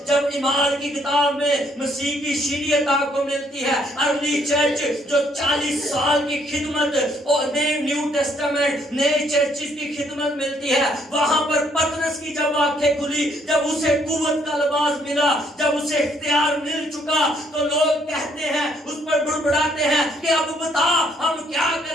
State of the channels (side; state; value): both; normal; correlation 0.68